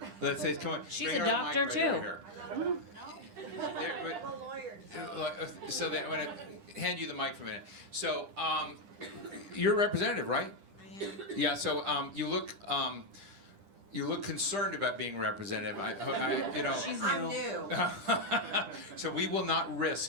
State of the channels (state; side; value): late; left; 10 ms